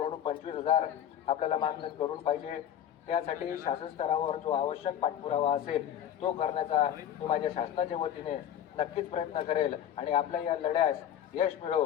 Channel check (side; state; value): right; quieter; 10.2 dB